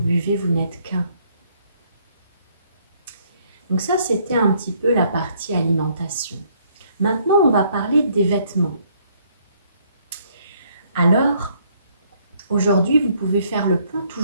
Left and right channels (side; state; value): both; inverted; correlation -0.66